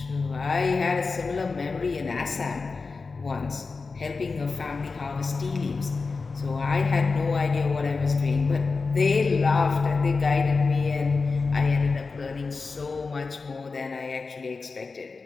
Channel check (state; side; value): quieter; right; 4.3 dB